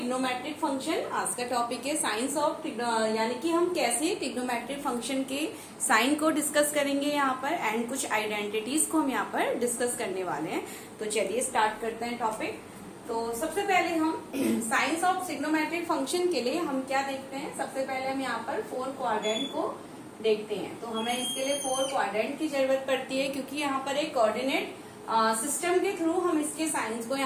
function. आज का topic है science of यानी कि हम कैसे trigonometric function के sign को discuss करेंगे यहाँ पर एंड कुछ आइडेंटिटीज को हम यहाँ पर डिस्कस करने वाले हैं. तो चलिए स्टार्ट करते हैं टॉपिक. तो सबसे पहले हम साइंस ऑफ ट्रिग्नोमेट्रिक फंक्शन के लिए हम क्या देखते हैं. सबसे पहले हम यहाँ पर 4 क्वाड्रेंट को देखते हैं. तो हमें इसके लिए 4 क्वाड्रेंट की जरूरत पड़ती है क्योंकि यहाँ पर एक कोऑर्डिनेट सिस्टम के थ्रू हम इसके साइंस को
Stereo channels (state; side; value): identical; both; correlation 1.00